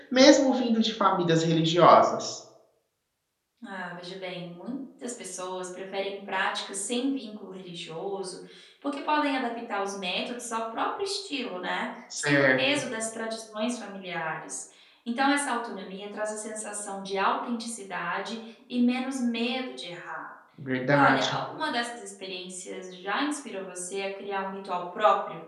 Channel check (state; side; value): identical; both; correlation 1.00